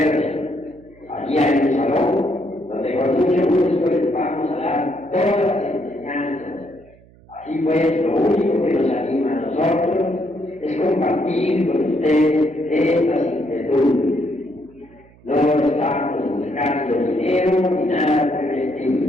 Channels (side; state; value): right; noise; hum, 27 dB below the sound